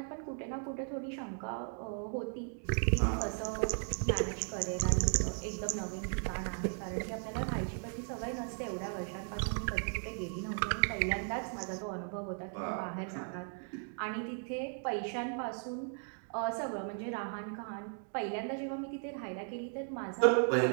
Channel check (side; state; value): left; silent; 53 dB below the other